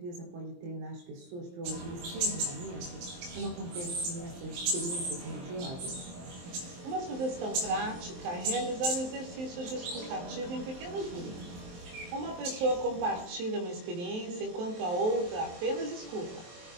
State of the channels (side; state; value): left; late; 23 ms